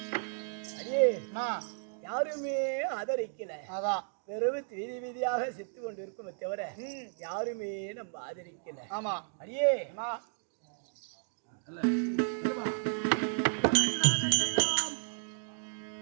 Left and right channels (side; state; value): left; silent; digital silence